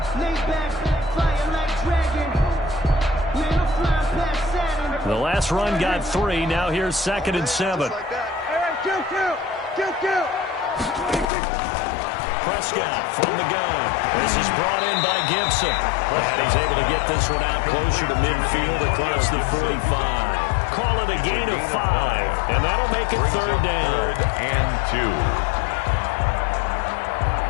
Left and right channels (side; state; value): right; drops out; at 11.2 s